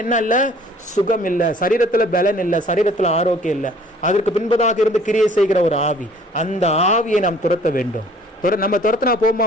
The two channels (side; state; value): both; normal; correlation 0.54